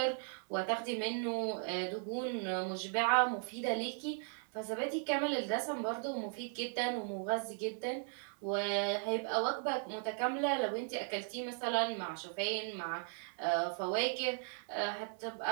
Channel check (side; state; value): left; silent; 53 dB below the other